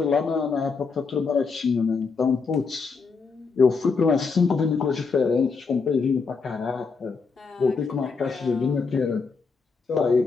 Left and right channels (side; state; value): right; quieter; 4.8 dB